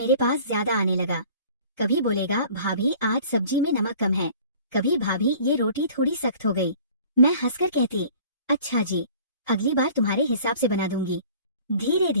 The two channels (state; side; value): inverted; both; correlation -0.49